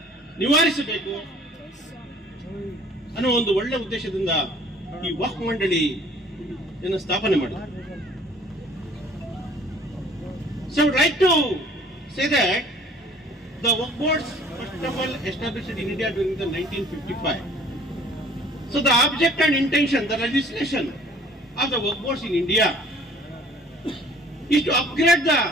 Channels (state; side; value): normal; both; correlation 0.53